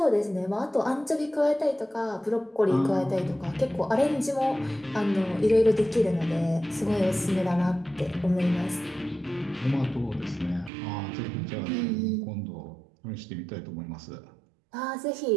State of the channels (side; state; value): left; drops out; at 10.7 s